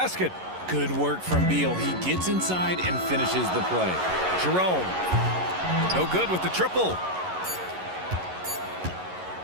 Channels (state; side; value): late; left; 11 ms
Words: Good work from Beal. He gets inside and finishes the play. Jerome. No good with the triple.